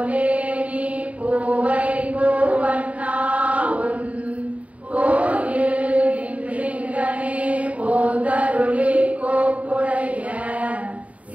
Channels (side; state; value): left; late; 0.067 ms